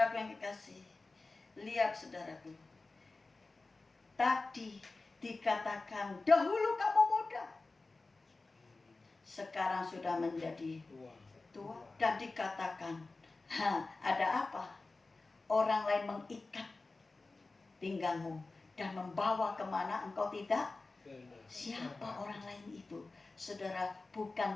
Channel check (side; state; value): right; quieter; 3.5 dB